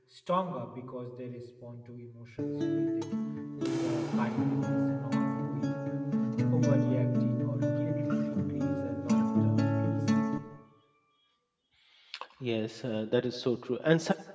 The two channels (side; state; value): both; identical; correlation 1.00